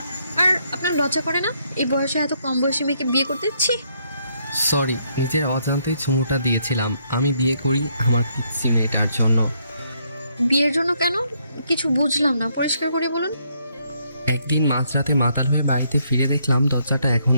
আর আপনার লজ্জা করে না এই বয়সে এত কম বয়সী মেয়েকে বিয়ে করতে? ছি! সরি, নিজের অজান্তেই চুমুটা দিয়েছিলাম। আমি বিয়ে করি আমার পিচ্ছি মেয়েটার জন্য। বিয়ের জন্য কেন? কিছু বুঝলাম না, পরিষ্কার করে বলুন। একদিন মাঝরাতে মাতাল হয়ে বাড়িতে ফিরে দেখলাম দরজাটা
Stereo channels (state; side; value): inverted; both; correlation -0.72